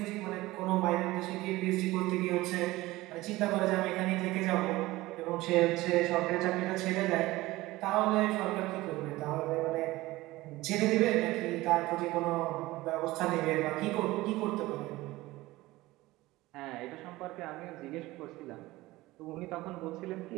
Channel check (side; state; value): left; quieter; 18.7 dB